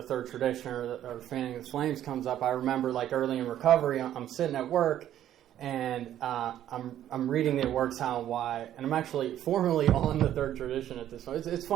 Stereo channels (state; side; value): quieter; left; 11.6 dB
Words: third tradition or fanning the flames comes up. I remember early in recovery, I'm sitting at work. And I'm reading the It Works How and Why, and I'm actually formally on the third tradition at this point. It's